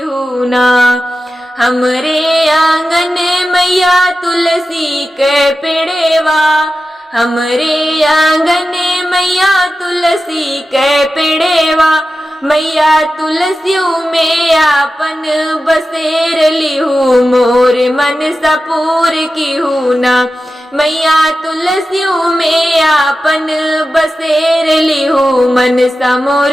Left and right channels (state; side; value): normal; both; correlation 0.93